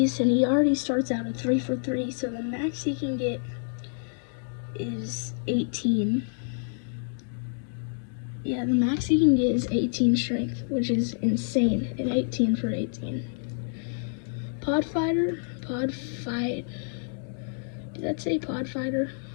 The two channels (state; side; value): silent; right; digital silence